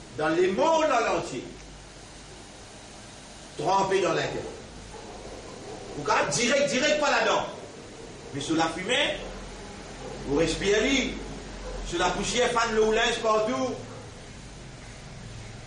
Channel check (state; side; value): identical; both; correlation 1.00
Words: dans les mondes entier trempé dans l'intérêt. Vous pouvez direct pas là-dedans. Mais sur la fumée, vous respirez, sur la poussière, fan le linge partout.